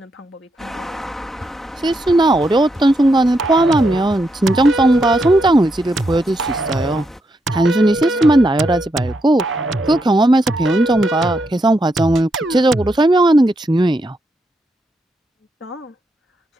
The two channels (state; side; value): normal; both; correlation 0.81